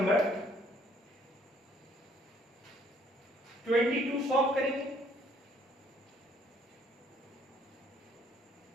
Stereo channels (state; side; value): normal; both; correlation 0.63